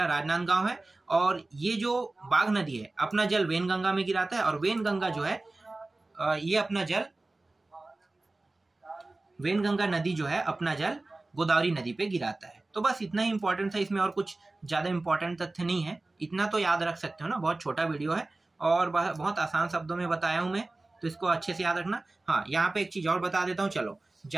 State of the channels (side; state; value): left; quieter; 3.0 dB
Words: राजनांदगांव है। और ये जो बाघ नदी है अपना जल वेनगंगा में गिराता है, और वेनगंगा जो है ये अपना जल, वेनगंगा नदी जो है अपना जल गोदावरी नदी पे गिराता है। तो बस इतना ही इंपॉर्टेंट था, इसमें और कुछ ज्यादा इंपॉर्टेंट तथ्य नहीं है। इतना तो याद रख सकते हो ना, बहुत छोटा वीडियो है और बहुत आसान शब्दों में बताया हूं मैं, तो इसको अच्छे से याद रखना। हाँ, यहाँ पे एक चीज और बता देता हूँ। चलो